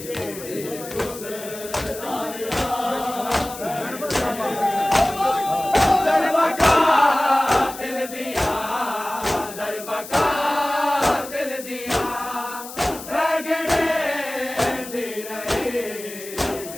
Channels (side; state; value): left; noise; hiss, 13 dB below the sound